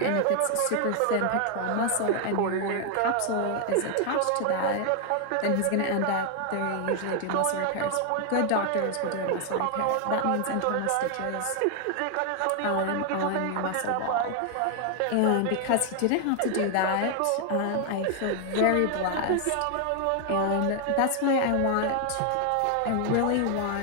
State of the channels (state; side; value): different; both; correlation 0.00